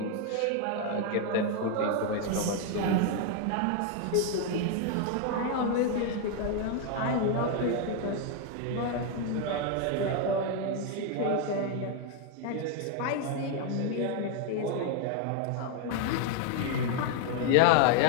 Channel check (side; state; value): both; different; correlation 0.01